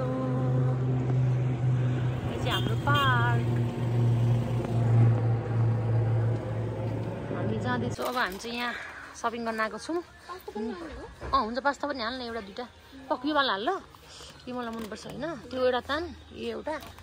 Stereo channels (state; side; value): identical; both; correlation 1.00